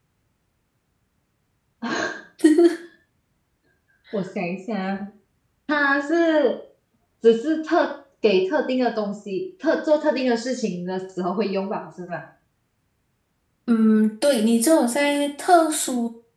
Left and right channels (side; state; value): both; identical; correlation 1.00